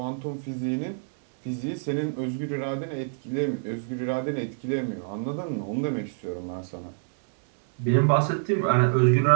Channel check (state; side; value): silent; left; digital silence